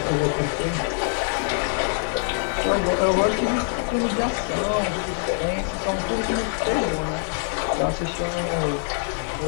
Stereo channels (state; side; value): silent; right; 62 dB below the other